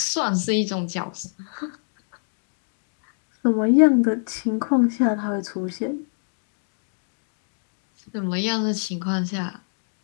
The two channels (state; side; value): silent; right; digital silence